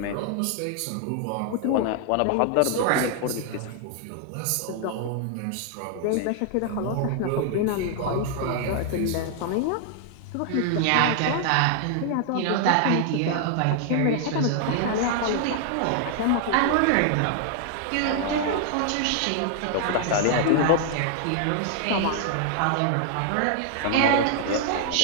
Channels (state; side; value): different; both; correlation 0.00